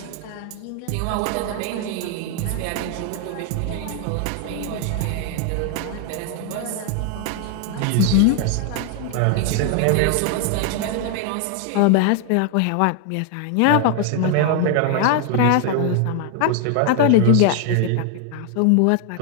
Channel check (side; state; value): both; different; correlation 0.00